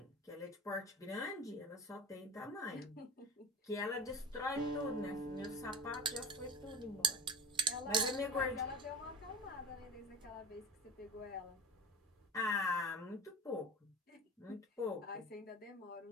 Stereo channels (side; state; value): both; normal; correlation 0.34